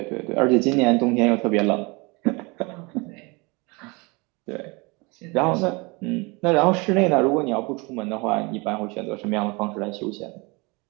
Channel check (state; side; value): quieter; left; 27.2 dB